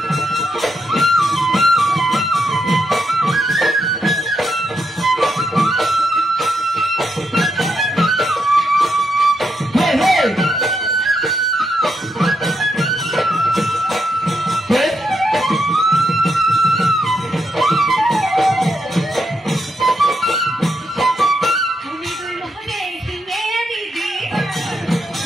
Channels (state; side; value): normal; both; correlation 0.81